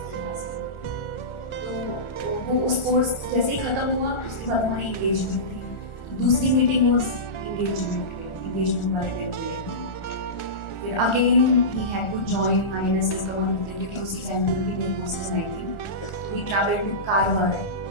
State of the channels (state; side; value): late; right; 1.4 ms